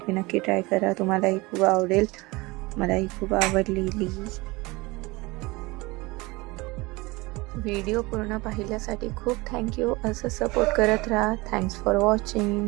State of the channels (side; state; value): left; quieter; 23.3 dB